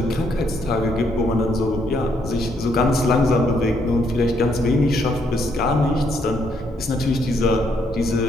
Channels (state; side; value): normal; both; correlation 0.72